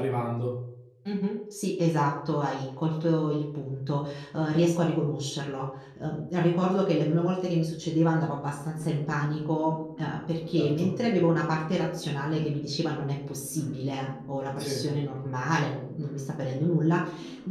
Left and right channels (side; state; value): both; identical; correlation 1.00